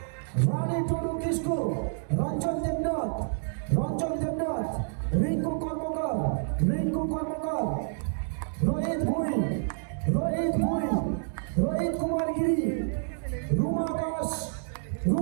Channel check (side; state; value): left; silent; 59 dB below the other